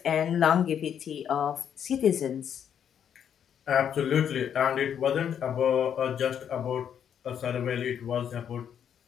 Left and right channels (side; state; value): right; quieter; 8.7 dB